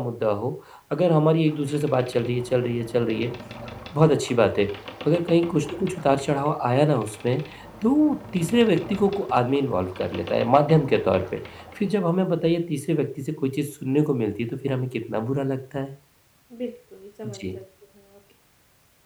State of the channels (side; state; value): both; identical; correlation 1.00